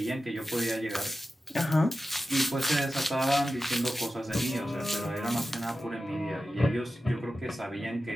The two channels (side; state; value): both; normal; correlation 0.92